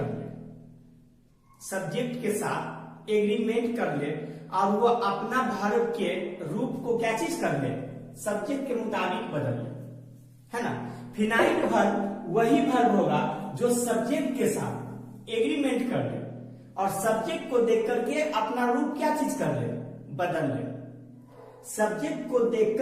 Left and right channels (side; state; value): both; identical; correlation 1.00